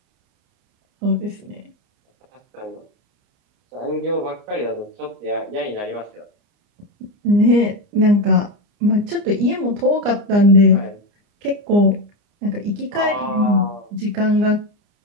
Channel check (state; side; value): late; left; 29 ms